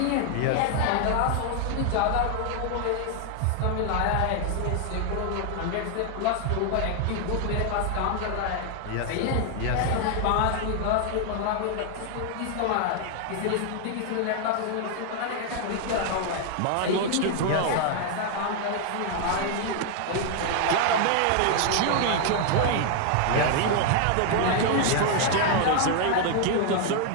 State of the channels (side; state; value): both; different; correlation 0.00